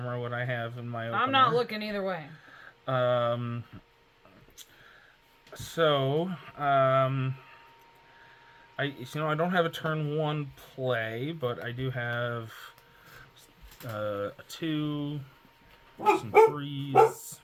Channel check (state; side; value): identical; both; correlation 1.00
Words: what I have in my opener. I'm not looking either way. I don't have a turn 1 play, but I do have a 2, some 3s.